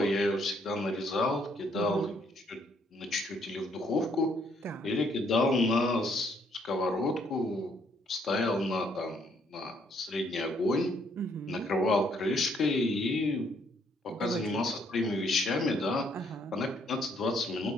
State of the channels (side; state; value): both; normal; correlation 0.68